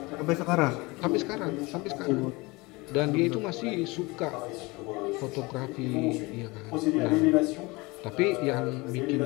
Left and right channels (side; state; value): right; quieter; 24.2 dB